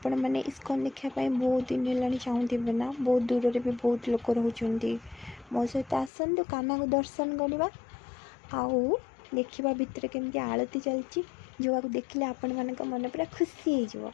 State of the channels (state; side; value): drops out; right; at 6.1 s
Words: मैंने इस्कन देखापी बहुत दिन है चाहूे ना। बहुत दूर रे भी बहुत लोक रोचे मो सहित आसतु काना को दर्शन करवा आउ देखा भितर केमती आलती चलती जो देखिले आपण मान मन पूरा खुशी हो